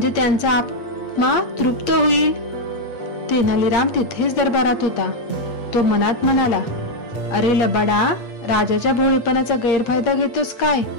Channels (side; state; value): right; late; 8.6 ms